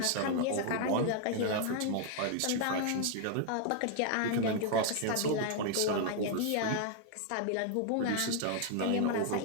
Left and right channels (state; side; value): different; both; correlation 0.00